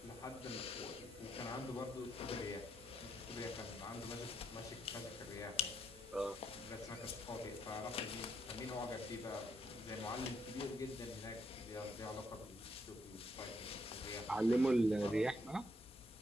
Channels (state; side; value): normal; both; correlation 0.76